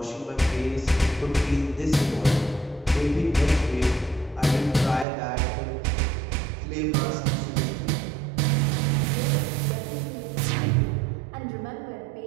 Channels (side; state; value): left; drops out; at 5.1 s